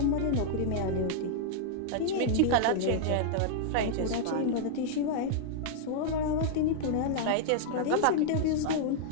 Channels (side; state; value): both; different; correlation -0.01